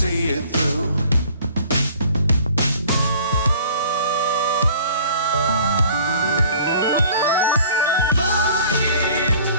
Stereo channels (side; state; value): both; inverted; correlation -0.51